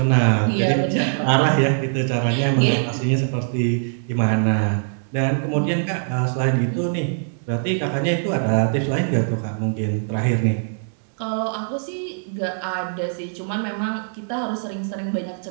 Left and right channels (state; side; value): silent; left; digital silence